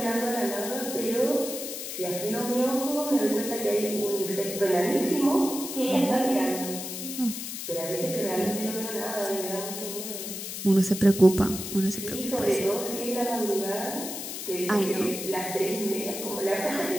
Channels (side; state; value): left; noise; hiss, 7 dB below the sound